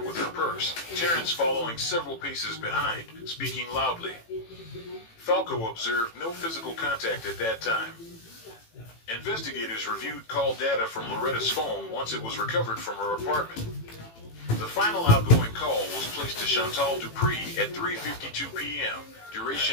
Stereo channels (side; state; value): right; late; 18 ms